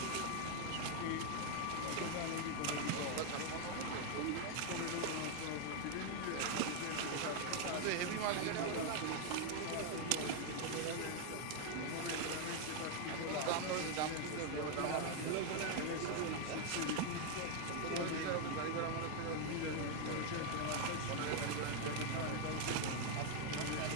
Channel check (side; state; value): both; different; correlation 0.00